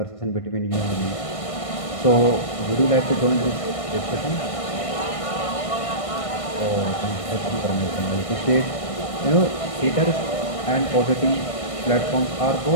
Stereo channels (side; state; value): right; late; 1.5 ms